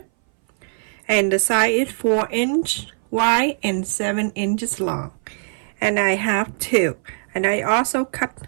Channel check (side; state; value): left; silent; 61 dB below the other